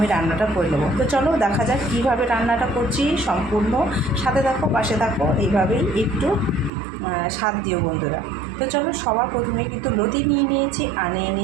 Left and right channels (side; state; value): left; drops out; at 6.7 s